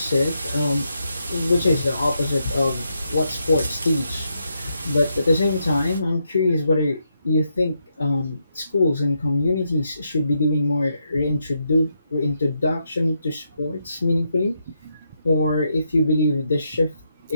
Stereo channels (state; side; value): inverted; both; correlation -0.81